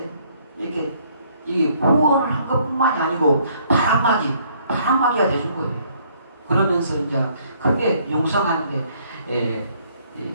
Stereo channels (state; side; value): inverted; both; correlation -0.64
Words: 이 후원을 한 것뿐만이 아니고 바람막이가 돼준 거예요. 그러면서 이제 크게 융성하는데